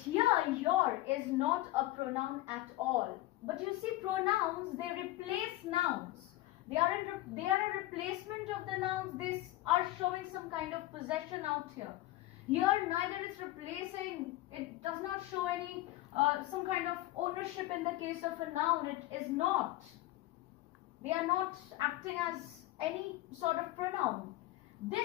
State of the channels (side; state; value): right; quieter; 16.8 dB